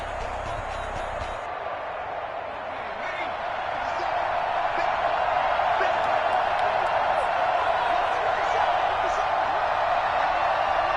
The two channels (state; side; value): identical; both; correlation 1.00